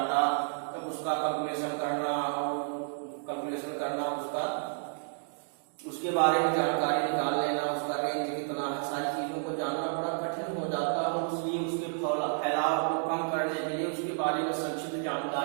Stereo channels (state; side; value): silent; left; digital silence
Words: तब उसका कैलकुलेशन करना उसका उसके बारे में जानकारी निकाल लेना, उसका रेंज कितना है, सारी चीजों को जानना बड़ा कठिन हो जाता है। इसलिए उसके फैलाव को कम करने के लिए, उसके बारे में संक्षिप्त